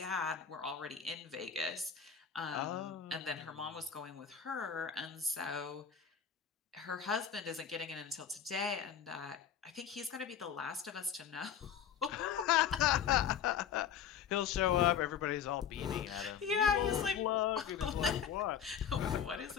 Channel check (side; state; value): right; quieter; 8.1 dB